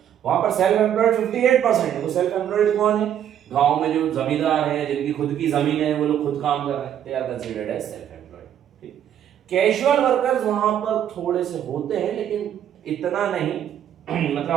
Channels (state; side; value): quieter; left; 10.1 dB